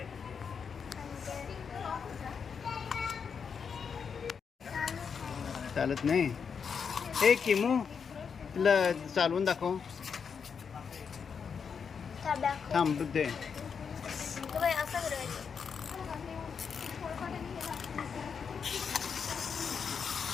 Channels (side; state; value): right; quieter; 6.4 dB